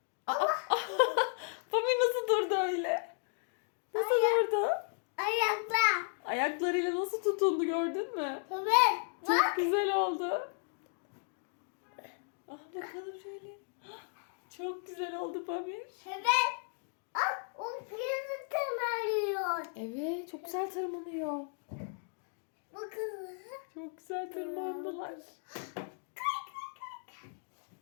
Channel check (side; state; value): right; silent; 55 dB below the other